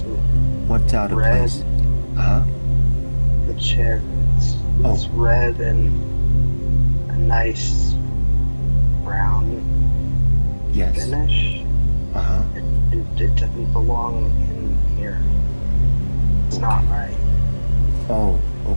What's out of red. place? Uh-huh. The chair. It's red and a nice brown Yes. finish. Uh-huh. It doesn't belong in here. It's not right. Oh,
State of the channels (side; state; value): both; inverted; correlation -1.00